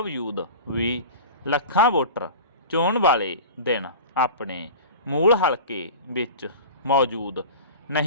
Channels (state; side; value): inverted; both; correlation -0.35